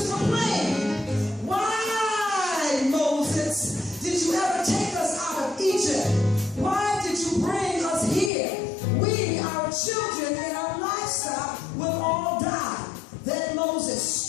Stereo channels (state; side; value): drops out; right; at 8.3 s